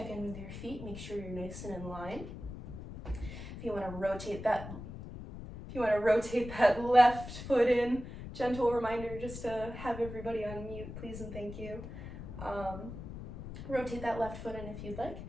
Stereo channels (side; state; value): left; noise; rumble, 10 dB below the sound